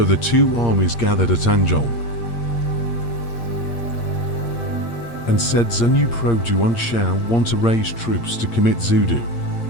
the two armies gathered at Anzhong and said, "Zunyu Pro Juan Shao want to raise troops to commit Zudu,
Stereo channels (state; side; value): late; right; 8.6 ms